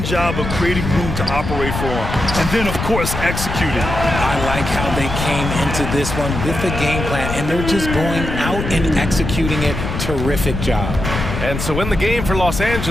job of creating room to operate for him. And then, of course, executing. I like how they came into this one with a game plan, and they're just going out and executing it. Terrific job. And so in the game for Los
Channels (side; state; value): left; noise; rumble, 5 dB below the sound